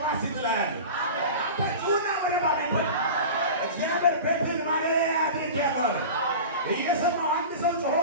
ሲጥላል። አንተ ጩና በደንብ አሜን በል። እግዚአብሔር ቤትን ማደሪያ ያድርጋል። እየሰማው አንድ ሰው ጮሆ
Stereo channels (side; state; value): both; inverted; correlation -0.32